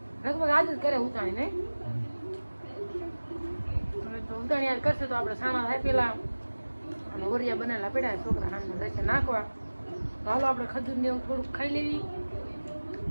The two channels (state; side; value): inverted; both; correlation -1.00